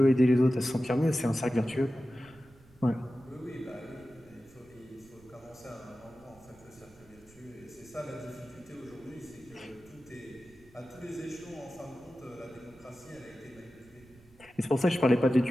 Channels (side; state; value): right; noise; rumble, 26 dB below the sound